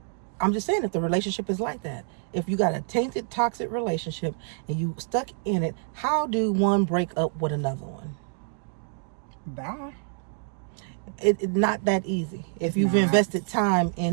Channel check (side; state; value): left; silent; digital silence